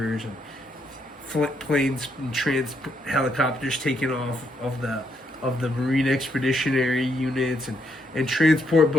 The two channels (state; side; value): normal; both; correlation 0.76